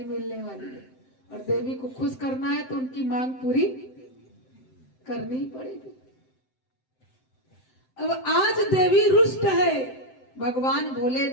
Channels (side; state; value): right; late; 7.7 ms